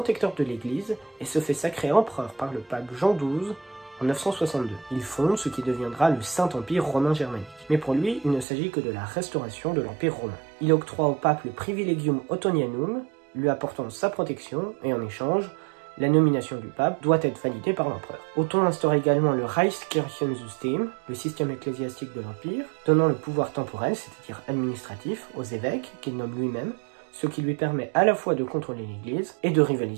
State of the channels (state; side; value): drops out; left; at 8.5 s